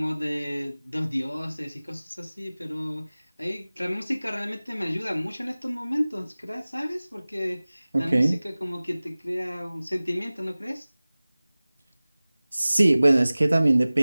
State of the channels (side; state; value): both; inverted; correlation -0.99